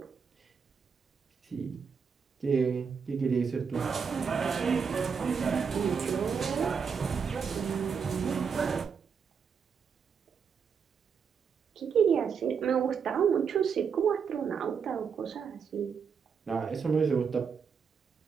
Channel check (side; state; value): left; quieter; 6.3 dB